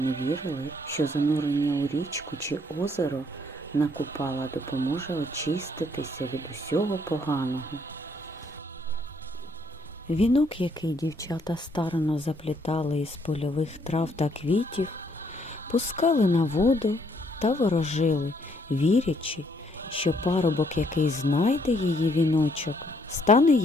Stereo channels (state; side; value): normal; both; correlation 0.69